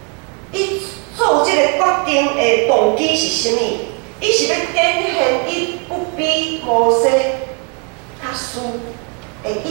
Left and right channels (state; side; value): quieter; left; 36.6 dB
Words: 伊做即个决定的动机是啥物？伊是要展现伊不比摩西较输的